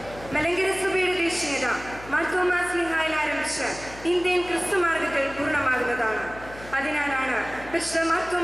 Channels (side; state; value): left; noise; hum, 17 dB below the sound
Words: മലങ്കര സഭയുടെ ദേശീയത മാർത്തോമാ സ്ലീഹായിൽ ആരംഭിച്ച് ഇന്ത്യൻ ക്രിസ്തുമാർഗത്തിൽ പൂർണ്ണമാകുന്നതാണ്. അതിനാലാണ് പരിശുദ്ധ